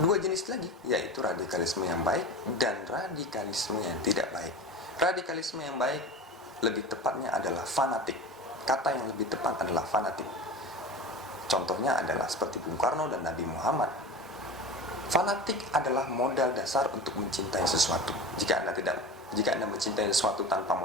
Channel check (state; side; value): normal; both; correlation 0.31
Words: jenis lagi, yaitu radikalisme yang baik dan radikalisme yang tidak baik. Radikalisme yang baik lebih tepatnya adalah fanatik. Kata yang lebih tepat adalah fanatik. Contohnya adalah seperti Bung Karno dan Nabi Muhammad. Fanatik adalah modal dasar untuk mencintai sesuatu. Jika Anda mencintai sesuatu tanpa